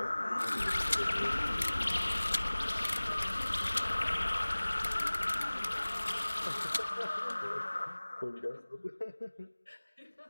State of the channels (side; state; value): both; inverted; correlation -1.00